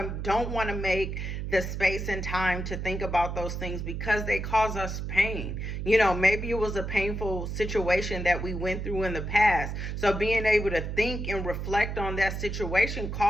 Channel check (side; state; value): right; noise; hum, 4 dB below the sound